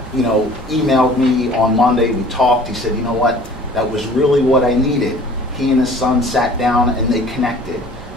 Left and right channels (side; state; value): both; normal; correlation 0.49